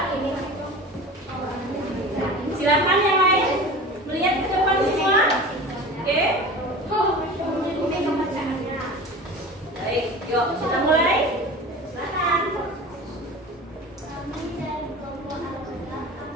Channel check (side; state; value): both; normal; correlation 0.35